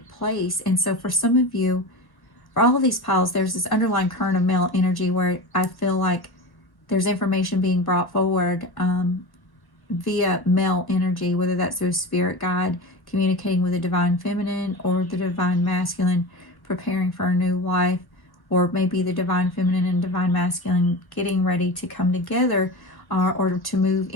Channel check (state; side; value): late; right; 1.1 ms